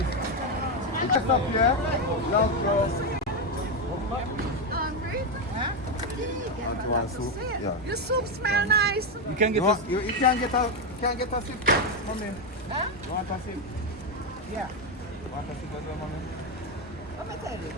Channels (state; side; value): normal; both; correlation 0.08